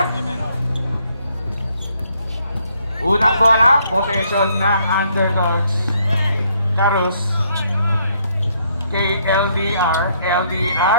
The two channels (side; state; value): both; inverted; correlation -0.70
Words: Unang bola, possession ng underdogs. Carus. Kay LDR.